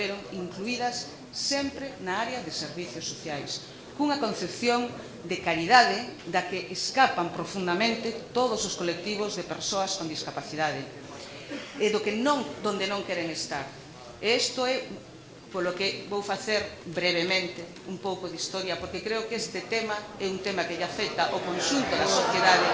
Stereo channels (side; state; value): both; identical; correlation 1.00